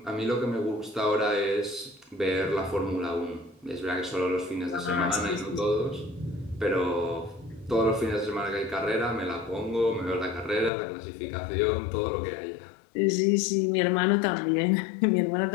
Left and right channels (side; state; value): right; drops out; at 10.7 s